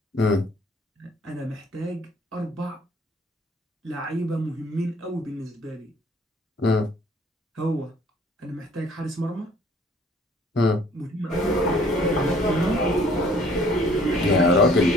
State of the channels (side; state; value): both; normal; correlation 0.57